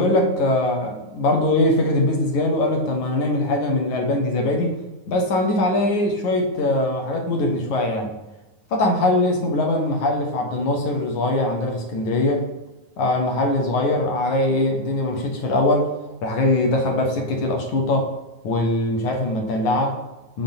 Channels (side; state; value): right; late; 9.5 ms